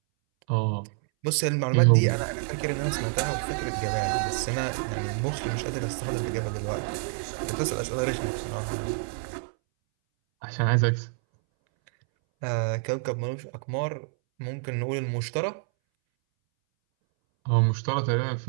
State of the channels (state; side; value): silent; left; 60 dB below the other